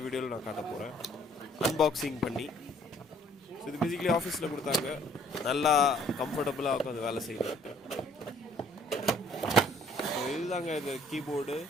வீடியோவில் நான் காட்ட போகிறேன் அன்பாக்சிங் பண்ணி. ஸோ இது பேசிக்கலி ஆஃபீஸில் கொடுத்தாங்க. நல்லா கம்ஃபர்டபுளாக உட்காந்து வேலை செய்யணும். ஸோ இதுதாங்க இது கீபோர்டு.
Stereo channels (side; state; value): both; normal; correlation 0.59